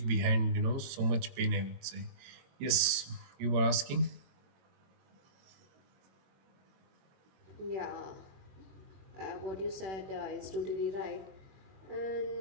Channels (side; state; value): left; late; 22 ms